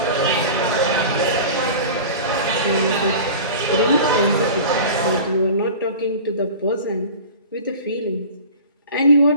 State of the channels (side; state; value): both; inverted; correlation -0.37